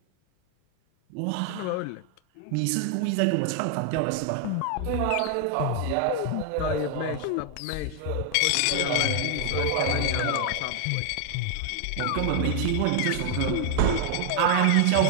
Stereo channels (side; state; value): both; different; correlation 0.00